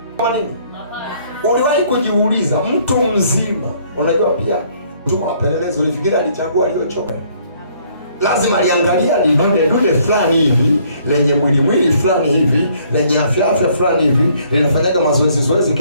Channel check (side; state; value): both; inverted; correlation -0.64